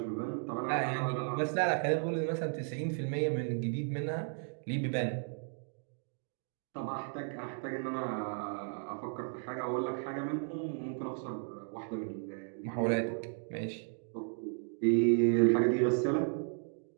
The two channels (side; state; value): left; silent; 55 dB below the other